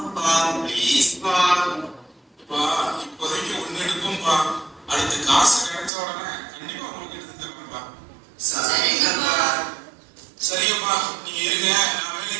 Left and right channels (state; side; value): drops out; left; at 5.9 s